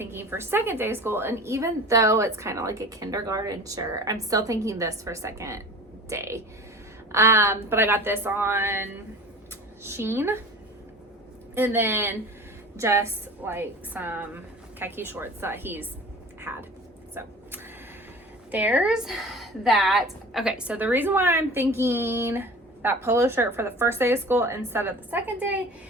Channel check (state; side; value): normal; both; correlation 0.40